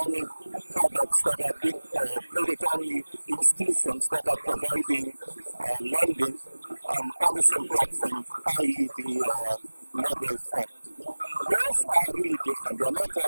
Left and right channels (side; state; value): both; inverted; correlation -1.00